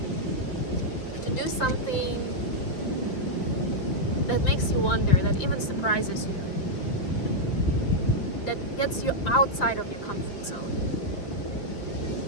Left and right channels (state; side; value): late; right; 5.8 ms